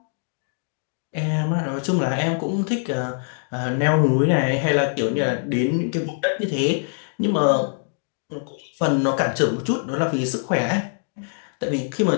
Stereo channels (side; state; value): right; silent; 63 dB below the other